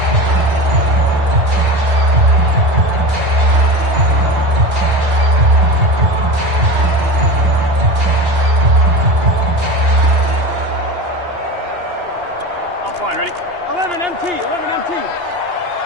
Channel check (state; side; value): late; left; 2.8 ms